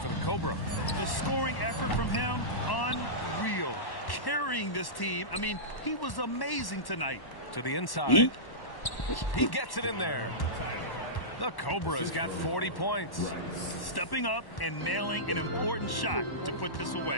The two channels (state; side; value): late; right; 1.1 ms